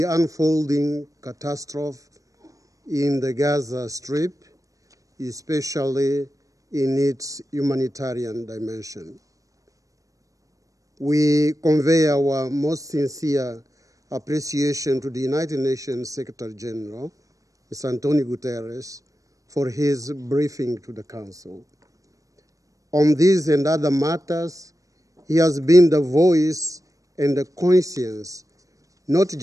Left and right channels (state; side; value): late; left; 0.16 ms